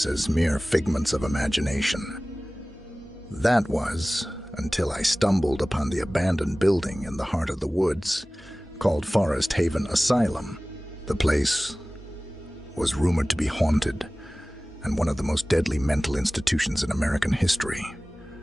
as mere figments of imagination. That was until I stumbled upon the abandoned building in the heart of the woods called Forest Haven Asylum. The place was rumored to be haunted and one of the most deadly mental institutions in American history.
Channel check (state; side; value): normal; both; correlation 0.98